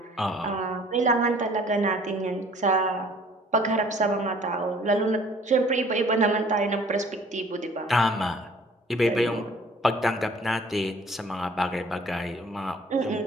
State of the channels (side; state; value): both; normal; correlation 0.54